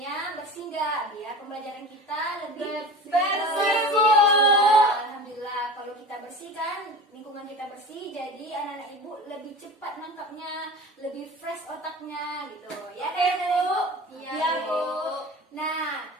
bersih nggak? Biar pembelajaran kita lebih Bersih, Bu. Alhamdulillah, kalau kita bersihkan, lingkungan kita bersih, jadi anak-anak ibu lebih cepat nangkapnya, lebih fresh otaknya gitu. Ya kan, anak-anak ibu? Iya, Bu. Nah,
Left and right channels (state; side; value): normal; both; correlation 0.34